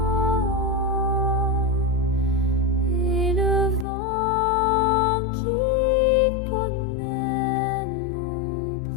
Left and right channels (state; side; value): drops out; right; at 3.9 s